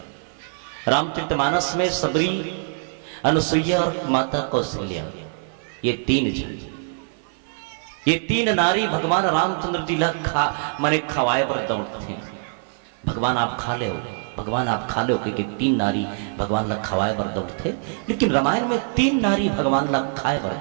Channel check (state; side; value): silent; left; 57 dB below the other